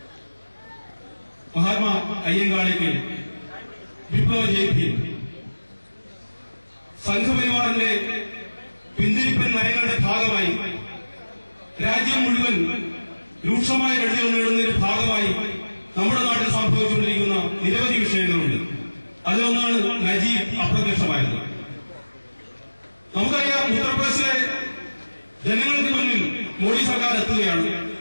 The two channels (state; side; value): inverted; both; correlation -1.00